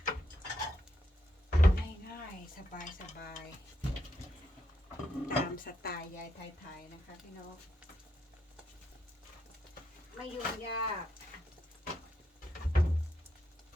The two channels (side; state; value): both; normal; correlation 0.80